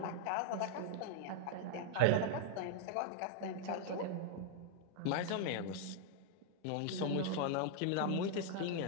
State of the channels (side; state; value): both; different; correlation -0.01